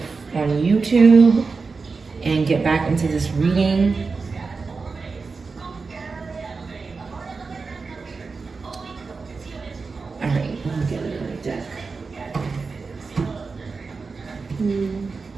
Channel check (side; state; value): left; quieter; 4.5 dB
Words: on YouTube and get back into this reading. All right, let me get another deck.